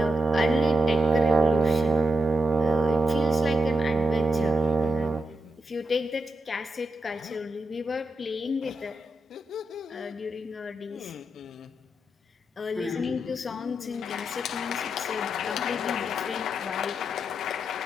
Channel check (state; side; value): normal; both; correlation 0.84